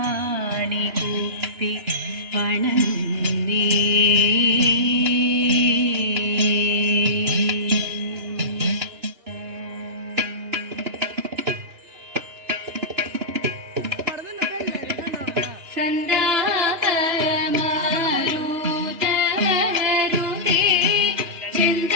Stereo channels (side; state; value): left; late; 2.9 ms